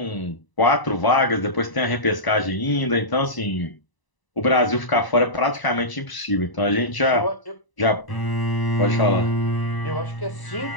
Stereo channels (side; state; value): right; late; 1.0 ms